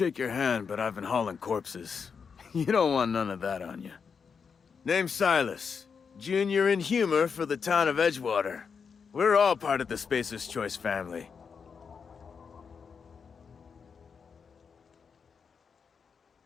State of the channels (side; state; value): right; quieter; 6.0 dB